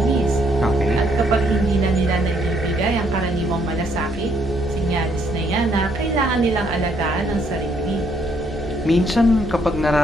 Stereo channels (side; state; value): both; normal; correlation 0.69